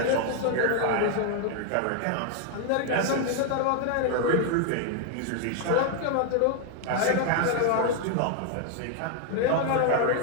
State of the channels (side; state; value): both; different; correlation 0.00